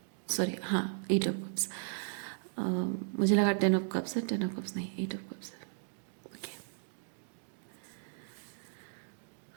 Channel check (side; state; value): left; silent; digital silence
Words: सॉरी हाँ एट ऑफ कप्स। मुझे लगा 10 ऑफ कप्स है, 10 ऑफ कप्स नहीं, 8 ऑफ कप्स है। Okay,